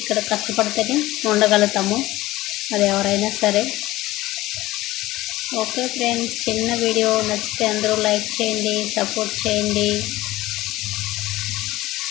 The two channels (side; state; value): right; quieter; 17.6 dB